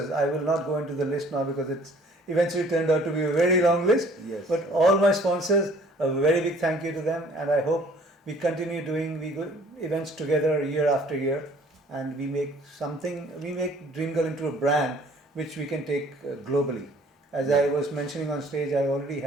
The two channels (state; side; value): normal; both; correlation 0.55